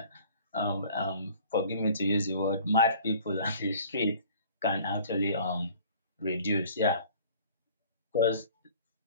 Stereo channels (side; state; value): both; inverted; correlation -0.50